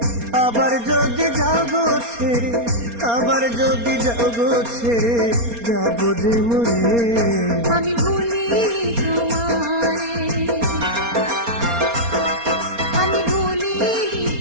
আবার যদি যাও গো ছেড়ে, আবার যদি যাও গো ছেড়ে, যাবো যে মরে, আমি ভুলিনি তোমারে, আমি ভুলিনি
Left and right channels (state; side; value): late; left; 4.3 ms